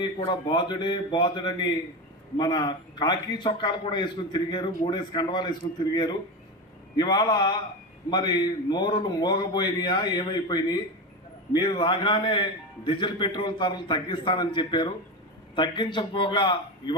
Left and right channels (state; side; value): normal; both; correlation 0.20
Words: కూడా బాదుడని మన కాకి చొక్కాలు కూడా వేసుకుని తిరిగారు, 3 కండవాలు వేసుకుని తిరిగారు. ఇవాళ మరి నోరులు మోగబోయినాయా ఏమైపోయినాయి? మీరు రాగానే డీజిల్ పెట్రోల్ ధరలు తగ్గిస్తానని చెప్పారు, తగ్గించకపోగా